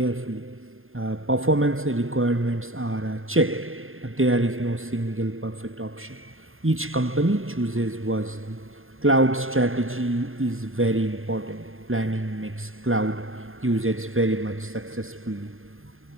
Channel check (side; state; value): left; late; 0.60 ms